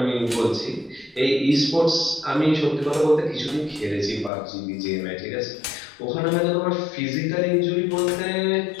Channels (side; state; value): right; drops out; at 4.3 s